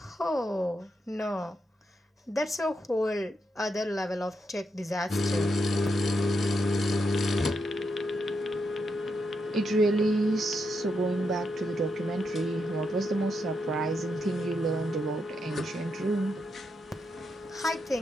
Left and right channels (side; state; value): both; normal; correlation 0.83